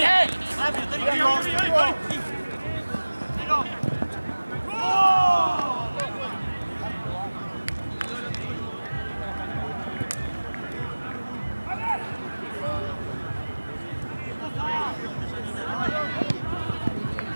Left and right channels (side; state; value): both; inverted; correlation -1.00